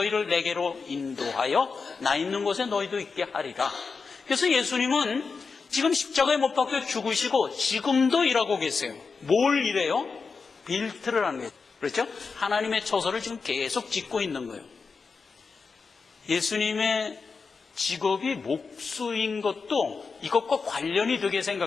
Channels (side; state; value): right; quieter; 4.9 dB